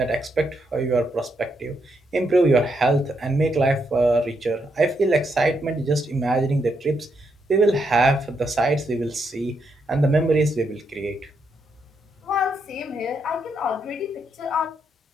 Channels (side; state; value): both; normal; correlation 0.79